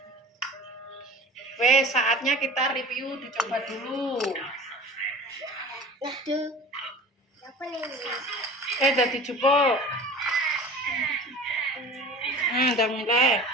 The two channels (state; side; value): normal; both; correlation 0.39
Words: Wes, saatnya kita review dicoba dulu. Aduh. Apa nih? Dadi jupuk. Udah mulai.